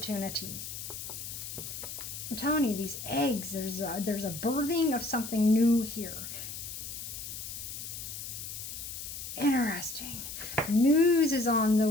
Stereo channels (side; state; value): left; noise; hiss, 8 dB below the sound